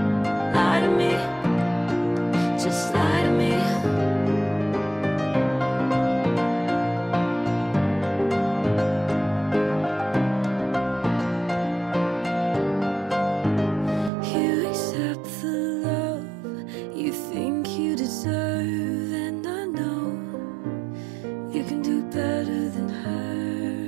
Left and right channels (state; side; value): drops out; left; at 14.1 s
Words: Lie to me, just lie to me. You accept the love you think you deserve, and I know you can do better than her.